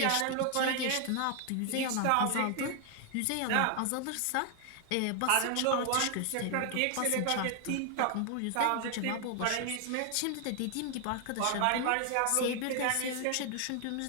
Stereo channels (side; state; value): both; different; correlation 0.00